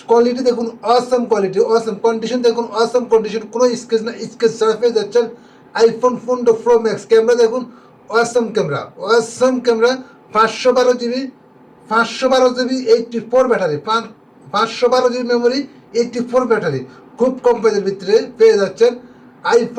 কোয়ালিটি দেখুন অসম কোয়ালিটি, অসম কন্ডিশন দেখুন, অসম কন্ডিশন, কোনো স্কেচ না, স্কেচ ছাড়া পেয়ে যাচ্ছেন আইফোন 15 প্রো ম্যাক্স। ক্যামেরা দেখুন awesome camera, 512 GB 84 battery, 512 GB memory, 84 battery খুব কম প্রাইসের ভিতরে পেয়ে যাচ্ছেন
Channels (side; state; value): both; identical; correlation 1.00